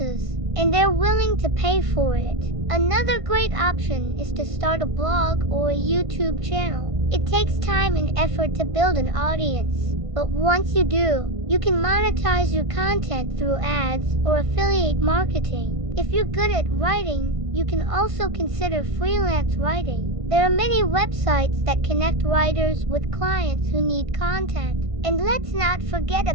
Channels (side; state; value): left; late; 1.5 ms